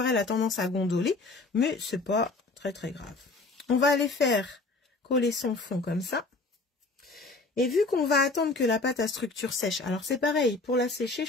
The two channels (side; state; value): right; quieter; 3.5 dB